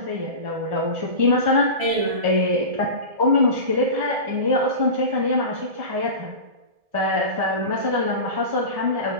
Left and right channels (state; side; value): late; left; 1.7 ms